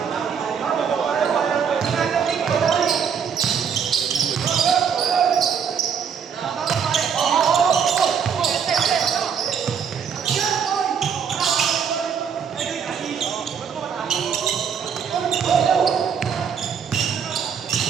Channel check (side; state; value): left; quieter; 7.2 dB